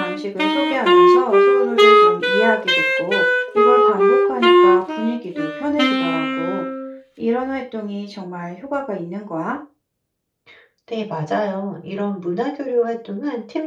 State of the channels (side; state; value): both; identical; correlation 1.00